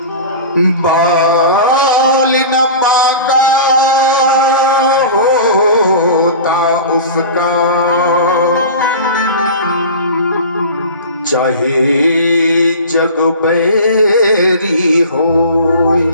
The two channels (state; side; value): inverted; both; correlation -0.35